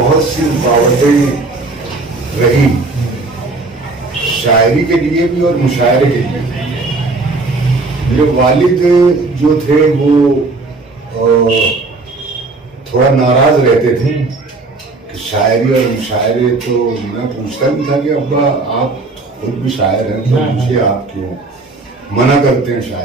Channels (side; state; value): left; quieter; 3.5 dB